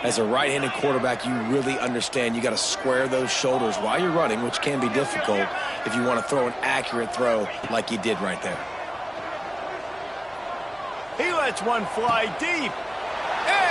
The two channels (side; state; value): right; noise; hum, 29 dB below the sound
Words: as a right-handed quarterback, you really understand you got to square those shoulders while you're running, which can be difficult if you want to throw an accurate throw like he did right there. He lets one fly deep.